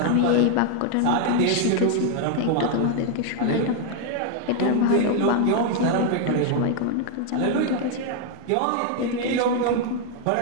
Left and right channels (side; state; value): both; different; correlation 0.00